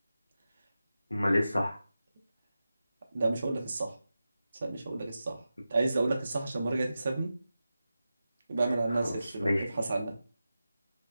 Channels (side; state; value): both; inverted; correlation -0.92